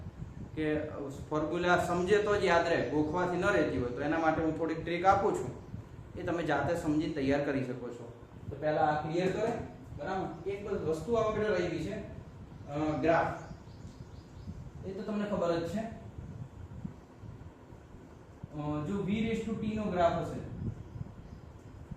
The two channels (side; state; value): both; identical; correlation 1.00